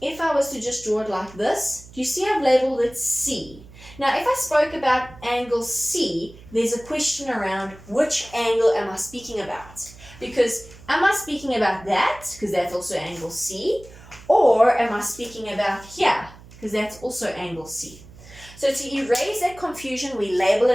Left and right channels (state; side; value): noise; right; hum, 20 dB below the sound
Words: I was to just draw it like this, do you see I've labeled it C? Now, if I spoke about angle C, there's a question around which angle am I speaking about? Because am I speaking about that, because that's also angle C, or am I speaking about here, because that's also angle C? So to erase that confusion, we label